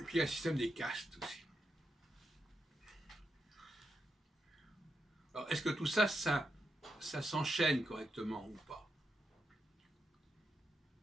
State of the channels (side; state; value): both; normal; correlation 0.85